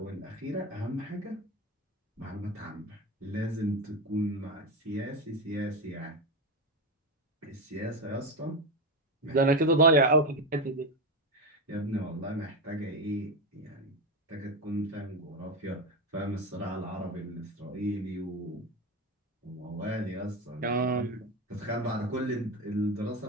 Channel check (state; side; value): normal; both; correlation 0.15